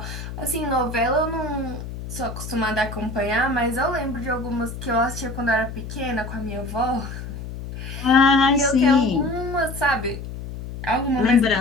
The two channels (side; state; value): left; noise; hum, 9 dB below the sound